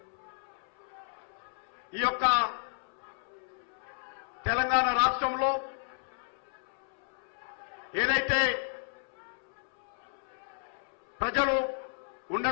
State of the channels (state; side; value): silent; right; 56 dB below the other